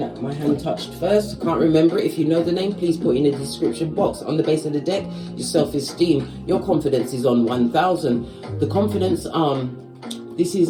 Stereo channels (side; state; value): both; identical; correlation 1.00